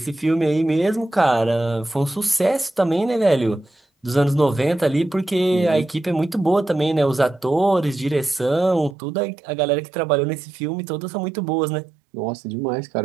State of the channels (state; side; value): drops out; left; at 9.0 s